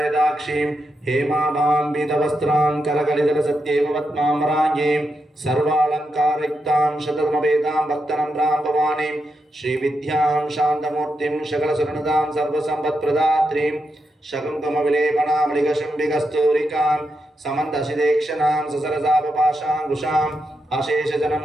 हेमाभां पीतवस्त्रां कलकलितलसत्येव पद्माम्बराङ्गीं सर्वालङ्कारयुक्तां शततमवेदां भक्तनम्रां भवानीं श्रीविद्यां शान्तमूर्तिं सकलसुरनुतां सर्वसम्पत्प्रदात्रीं शकुङ्कुमविलेपनामलिकशुम्बिकस्तूरिकां समन्तशिदेक्षणां ससरसापपाशाङ्कुशाम्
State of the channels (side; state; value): both; normal; correlation 0.85